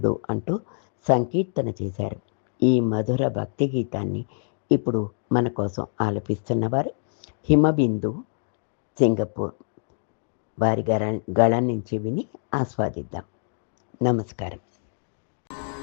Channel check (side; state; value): right; silent; digital silence